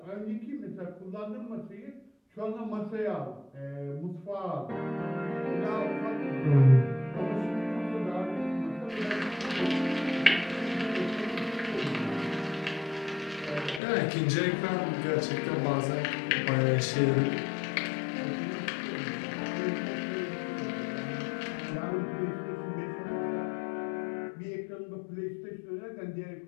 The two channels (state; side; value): drops out; right; at 13.8 s